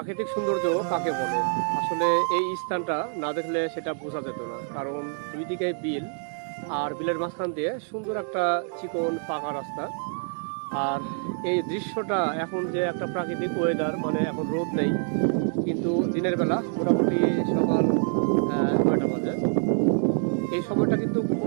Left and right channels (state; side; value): silent; left; 58 dB below the other